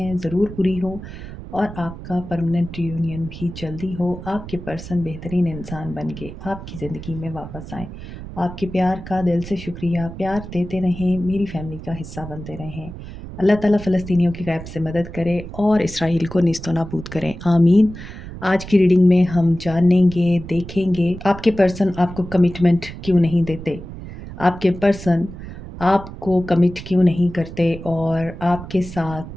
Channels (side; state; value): right; noise; rumble, 12 dB below the sound